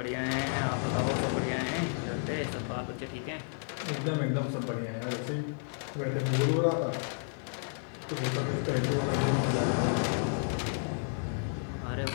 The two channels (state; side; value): silent; right; 57 dB below the other